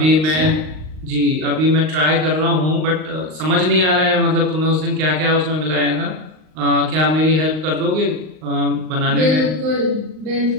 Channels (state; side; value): late; left; 38 ms